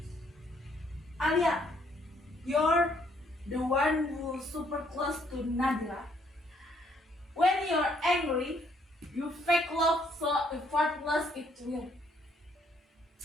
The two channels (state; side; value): normal; both; correlation 0.68